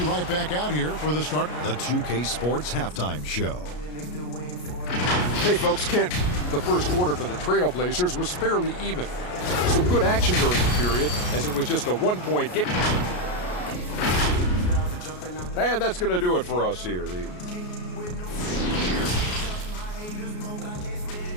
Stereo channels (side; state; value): right; late; 33 ms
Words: right back out here for the start. The 2K Sports Halftime Show. Hey, folks, Kent. The first quarter for the Trailblazers was fairly even. Some good action during the period, as it was just a 1-point game. And that's going to do it for us here.